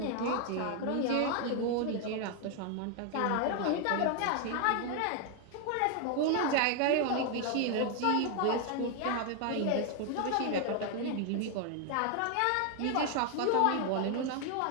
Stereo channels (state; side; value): different; both; correlation 0.01